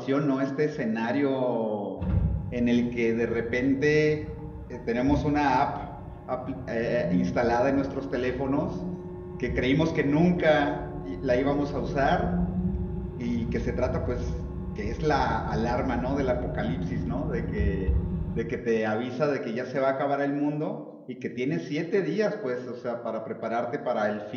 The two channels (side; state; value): both; identical; correlation 1.00